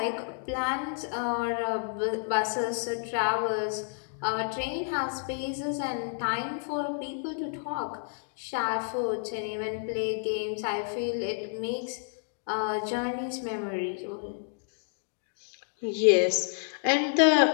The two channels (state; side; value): silent; right; digital silence